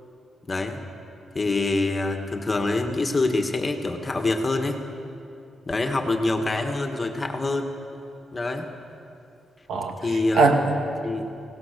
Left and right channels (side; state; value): both; normal; correlation 0.85